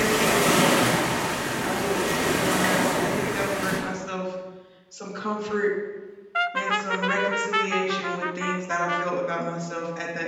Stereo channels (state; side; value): identical; both; correlation 1.00